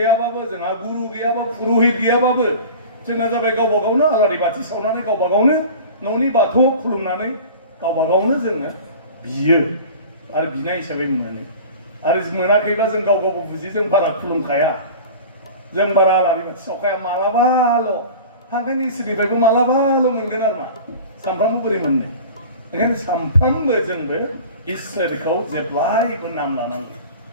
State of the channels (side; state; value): both; inverted; correlation -0.38